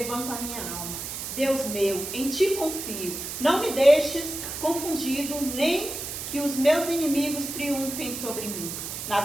a minha alma. Deus meu, em ti confio. Não me deixes confundido, nem que os meus inimigos triunfem sobre mim. Na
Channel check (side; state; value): right; noise; hiss, 6 dB below the sound